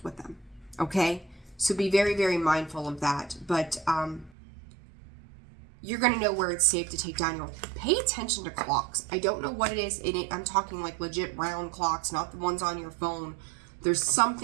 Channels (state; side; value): drops out; left; at 4.3 s